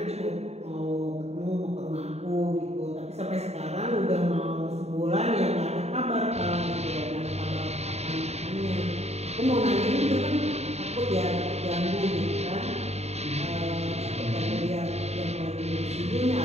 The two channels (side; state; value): left; late; 0.31 ms